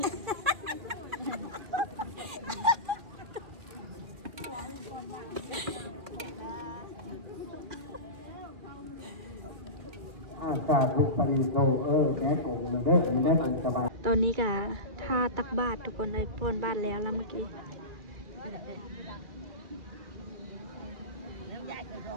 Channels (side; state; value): left; late; 2.2 ms